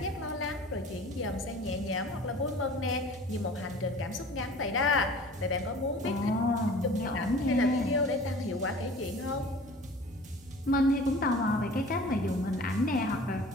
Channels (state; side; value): normal; both; correlation 0.44